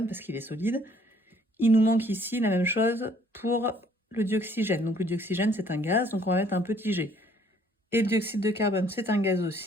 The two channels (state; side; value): normal; both; correlation 0.61